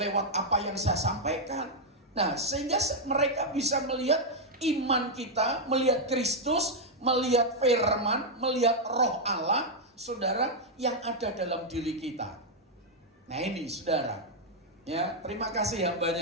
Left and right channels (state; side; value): normal; both; correlation -0.01